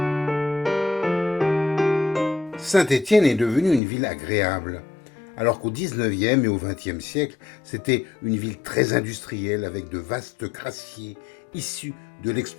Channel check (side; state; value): right; drops out; at 3.8 s